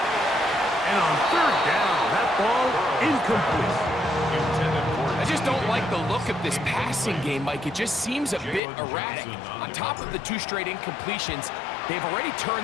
And on 3rd down, that ball incomplete. I just don't like the look of this passing game, Mike. It just seems a bit erratic. On top of the 2 straight incompletions, they've already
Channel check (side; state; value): right; drops out; at 8.6 s